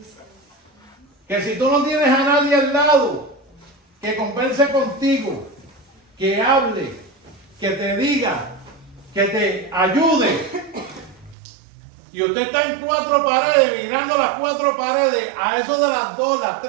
Que si tú no tienes a nadie al lado que converse contigo, que hable, que te diga, que te ayude, y usted está en 4 paredes, mirando las 4 paredes, a eso de las 2, las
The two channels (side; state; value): left; drops out; at 11.4 s